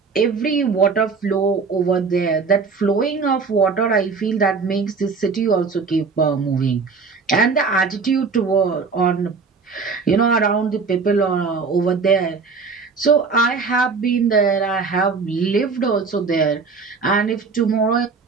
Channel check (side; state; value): left; quieter; 4.8 dB